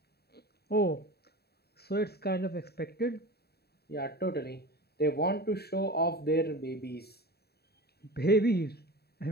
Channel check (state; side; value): late; right; 0.47 ms